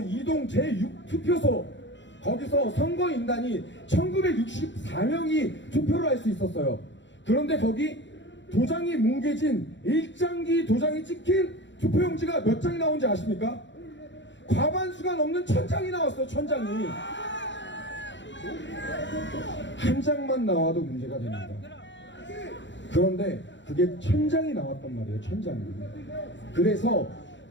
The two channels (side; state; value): right; late; 0.53 ms